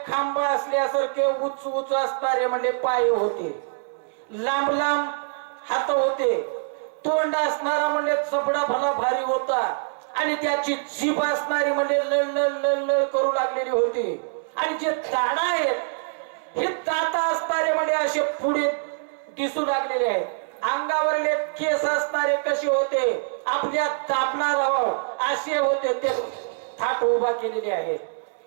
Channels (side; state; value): left; silent; digital silence